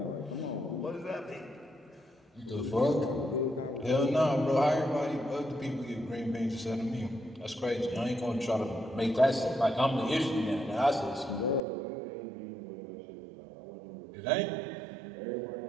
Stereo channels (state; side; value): drops out; left; at 11.6 s